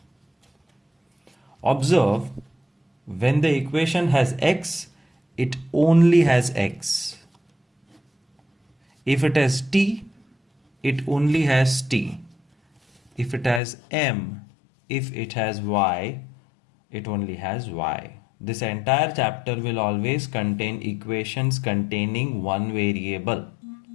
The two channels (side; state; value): right; drops out; at 13.6 s